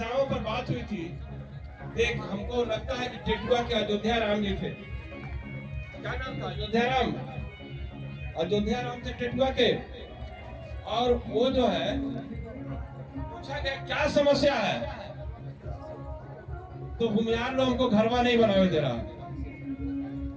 पर बात हुई थी। एक हमको लगता है कि टेटुआ के अयोध्या राम जी थे, क्या नाम था? अयोध्या राम थे टेटुआ के। और वो जो है पूछा गया क्या समस्या है, तो भूमिहार लोग हमको घरवा नहीं बनावे दे रहा।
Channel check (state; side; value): identical; both; correlation 1.00